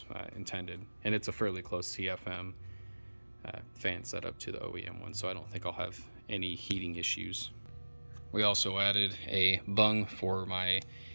intended. And it's a fairly close CFM fan setup to the OEM one, so I don't think I'll have any heating issues. We also added a bung for my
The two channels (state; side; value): inverted; both; correlation -1.00